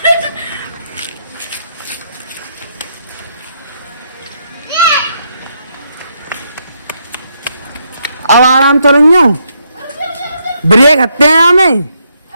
अब आराम तो नहीं हो, ब्रेक हत्ते हैं हमें।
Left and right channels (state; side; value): inverted; both; correlation -0.76